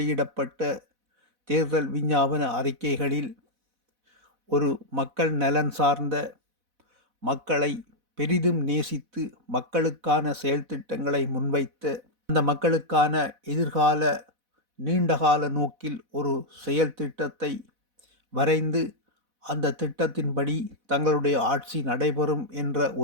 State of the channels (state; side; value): late; left; 4.1 ms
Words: தேர்தல் விஞ்ஞாபன அறிக்கைகளில் ஒரு மக்கள் நலன் சார்ந்த, மக்களை பெரிதும் நேசித்து மக்களுக்கான செயல் திட்டங்களை முன்வைத்த, அந்த மக்களுக்கான எதிர்கால நீண்டகால நோக்கில் ஒரு செயல் திட்டத்தை வரைந்து அந்த திட்டத்தின்படி தங்களுடைய ஆட்சி நடைபெறும் என்ற